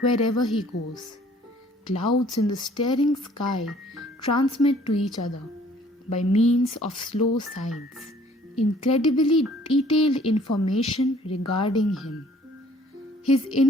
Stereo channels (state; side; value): normal; both; correlation 0.57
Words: he goes. Clouds in the staring sky transmit to each other, by means of slow signs, incredibly detailed information regarding him. His